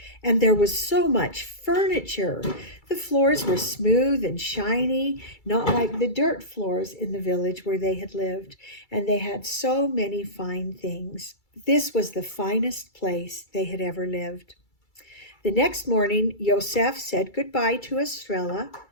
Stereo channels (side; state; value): right; late; 2.3 ms